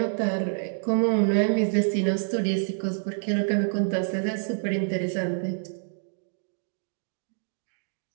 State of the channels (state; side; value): silent; left; digital silence